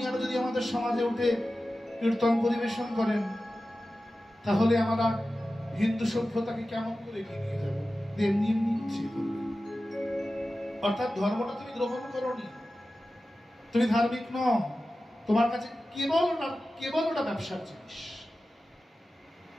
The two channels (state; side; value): normal; both; correlation 0.94